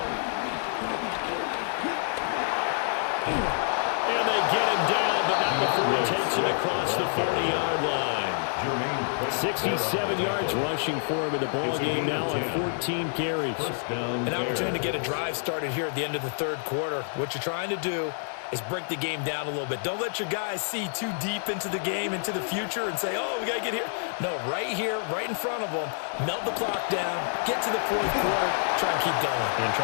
And they get him down, but not before he takes it across the 40-yard line. 67 yards rushing for him in the ball game now on 14 carries. An opportunity to get a drive started here at the end of the third quarter. What you're trying to do is break the game down a little bit. Don't let your guys see too deep into the game, into the future, and say, oh, we got to get here. No, right here, right in front of them, melt the clock down, get to the fourth quarter, try and keep going. And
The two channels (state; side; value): silent; right; 59 dB below the other